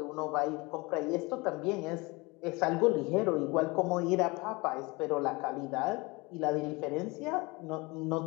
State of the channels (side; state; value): right; quieter; 25.1 dB